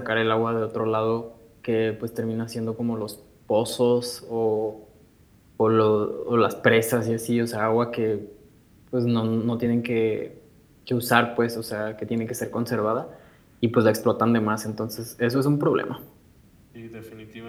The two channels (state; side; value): identical; both; correlation 1.00